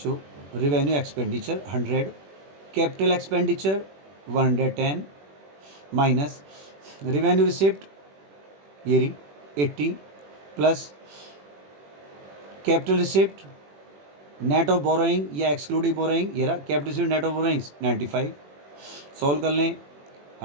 revenue expenditure 100, capital expenditure 110 minus revenue receipt ये रही 80 plus capital receipt net of borrowing या एक्सक्लूडिंग बोरोइंग ये रहा capital receipt net of borrowings 95। Solve कर लें,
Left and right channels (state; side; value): late; left; 21 ms